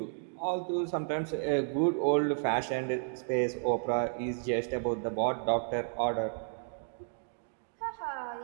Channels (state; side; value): silent; left; digital silence